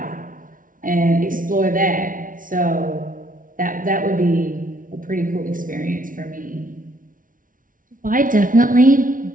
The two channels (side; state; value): left; late; 0.39 ms